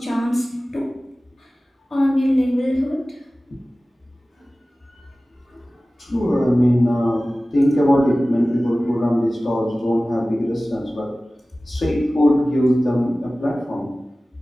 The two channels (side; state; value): both; normal; correlation 0.97